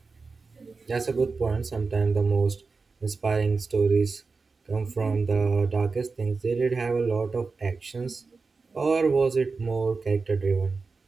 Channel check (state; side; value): quieter; left; 4.3 dB